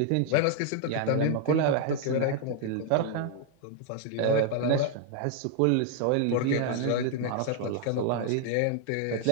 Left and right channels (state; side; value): different; both; correlation 0.00